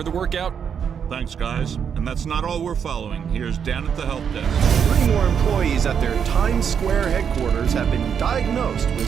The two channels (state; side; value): quieter; left; 7.5 dB